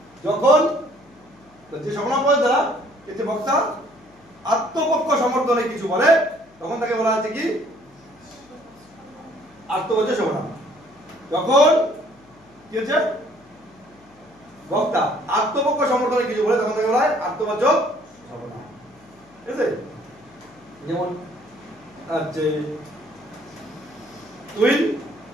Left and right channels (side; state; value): left; noise; hum, 28 dB below the sound